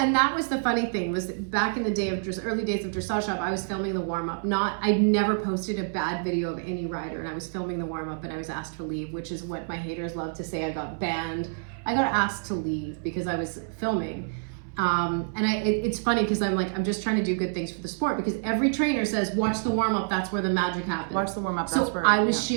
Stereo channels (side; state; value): left; silent; 60 dB below the other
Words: that was the funny thing, was that back in the day of early days of Dressage Hub, I was filming the warm-up. I never posted a bad video of any rider, and I was filming the warm-up, and I was asked to leave, which is what my haters love to say. I got banned. I got asked to leave because I was filming. It's funny because I'm just trying to do good things for the sport, because every trainer says watch the warm-up, that's where the magic happens. Watch the warm-up, so that's where I was